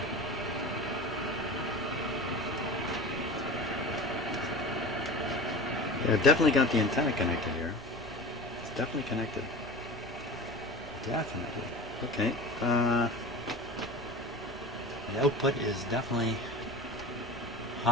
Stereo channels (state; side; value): normal; both; correlation 0.33